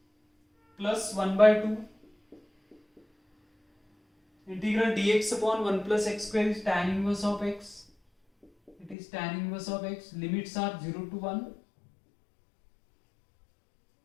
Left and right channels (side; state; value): right; drops out; at 9.0 s